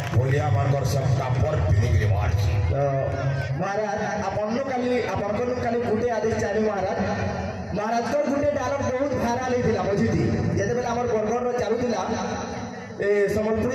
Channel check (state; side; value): identical; both; correlation 1.00